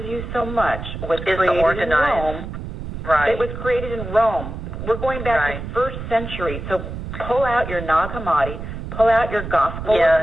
you so much was created in Rome. Right. It was created in Rome. We're going back to the 1st century. So pull out your Nag Hammadi, pull out your Gospel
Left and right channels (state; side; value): noise; right; rumble, 8 dB below the sound